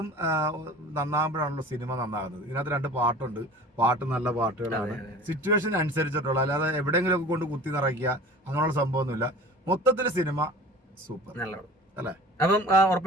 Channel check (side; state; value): both; normal; correlation 0.41